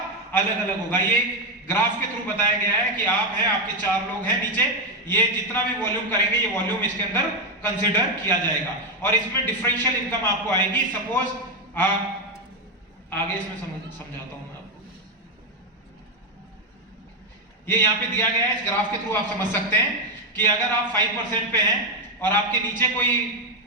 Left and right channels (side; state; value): both; normal; correlation 0.07